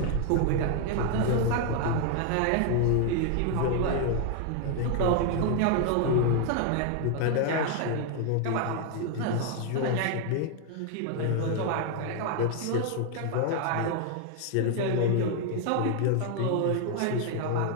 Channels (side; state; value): both; different; correlation 0.00